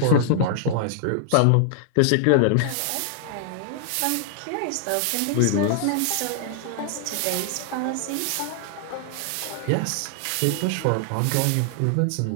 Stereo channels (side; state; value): both; different; correlation 0.00